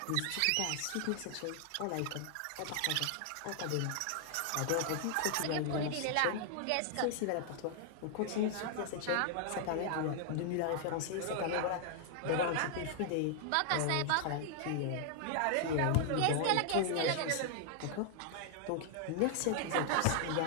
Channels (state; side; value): different; both; correlation 0.00